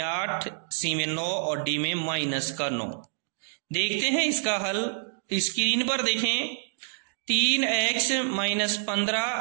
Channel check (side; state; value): left; silent; digital silence